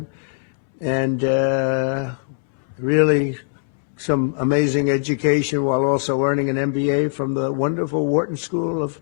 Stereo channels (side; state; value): right; silent; 65 dB below the other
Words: and really some amazing education while also earning an MBA from the wonderful Wharton School of